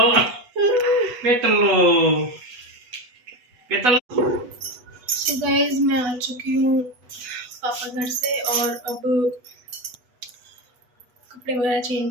सो गाइस मैं आ चुकी हूँ पापा घर से और अब कपड़े वगैरह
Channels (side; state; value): left; late; 8.1 ms